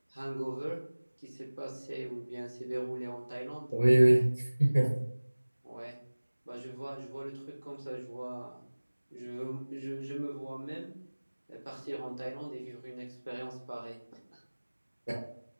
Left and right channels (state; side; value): inverted; both; correlation -1.00